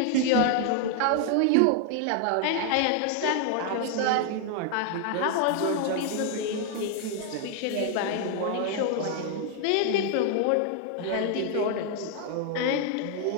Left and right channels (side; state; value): both; different; correlation 0.00